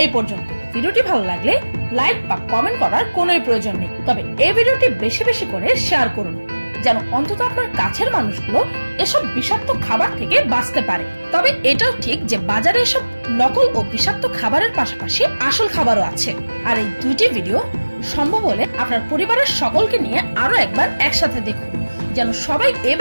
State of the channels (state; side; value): inverted; both; correlation -1.00